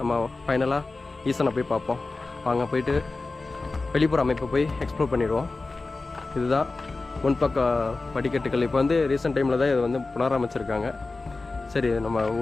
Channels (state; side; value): quieter; right; 3.5 dB